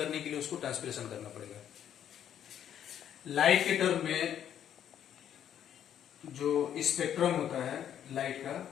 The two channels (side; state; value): right; quieter; 9.9 dB